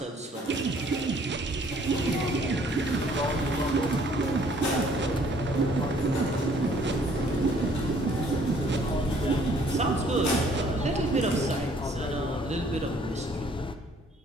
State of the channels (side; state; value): both; normal; correlation 0.60